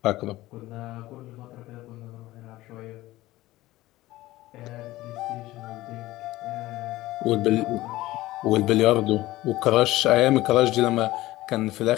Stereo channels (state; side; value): quieter; right; 17.3 dB